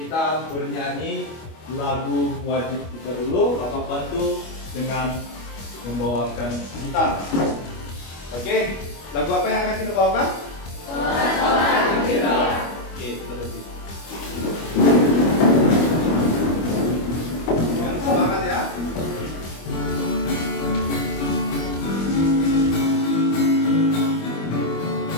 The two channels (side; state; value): right; late; 25 ms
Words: bernyanyi lagu wajib kita dulu. Bapak bantu dengan membawakan gitar. Oke, lagu apa yang akan kita bawakan? Oke, kita berhenti. Yang semangat ya.